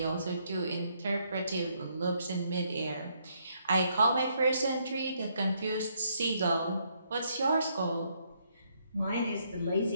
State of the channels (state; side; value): inverted; both; correlation -0.72